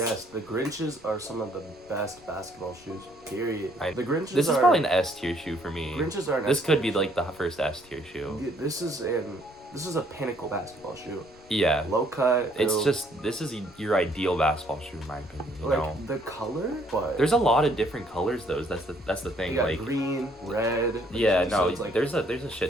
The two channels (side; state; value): left; noise; rumble, 26 dB below the sound